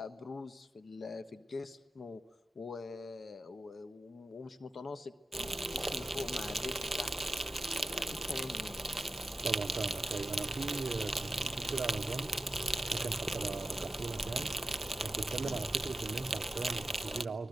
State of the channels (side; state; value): both; normal; correlation 0.92